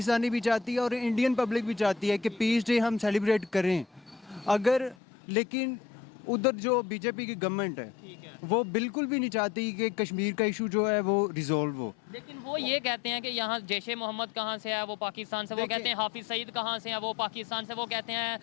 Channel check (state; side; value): drops out; right; at 5.0 s